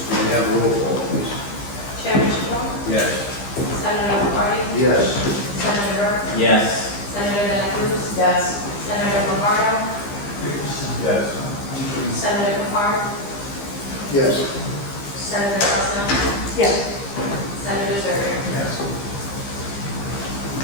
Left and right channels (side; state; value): right; late; 15 ms